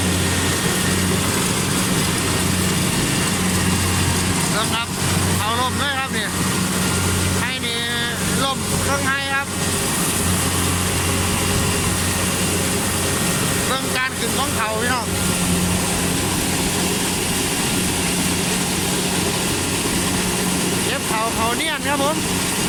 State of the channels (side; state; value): both; identical; correlation 1.00